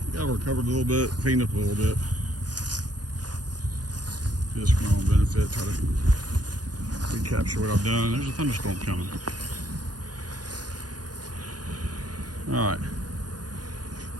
got recovered a little bit, cleaned up a little bit, just for my own benefit. Try to recapture what I've done. There's a thunderstorm coming. All right,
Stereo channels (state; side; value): late; left; 0.69 ms